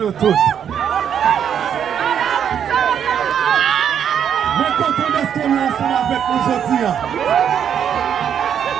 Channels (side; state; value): left; quieter; 8.6 dB